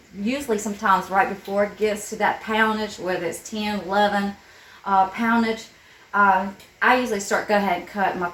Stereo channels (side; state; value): both; identical; correlation 1.00